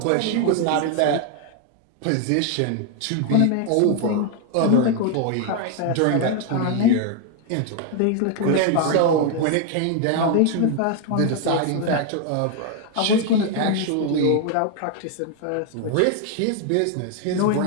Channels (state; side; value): different; both; correlation 0.00